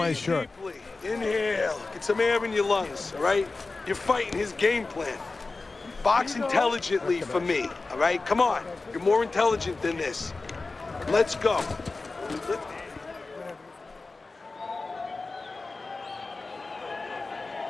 shirt. Deeply. Inhale. Get some air in your lungs, all right? You're fighting his game plan. Box intelligently for me, all right? Come on. You're more intelligent than this. Let's go.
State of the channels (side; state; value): right; quieter; 3.6 dB